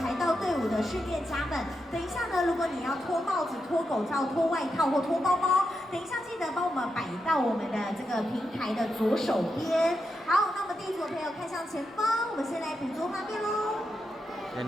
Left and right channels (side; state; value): both; normal; correlation 0.86